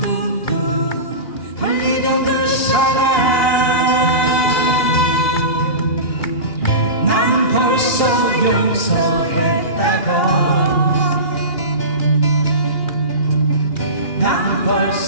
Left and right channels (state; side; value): late; right; 2.8 ms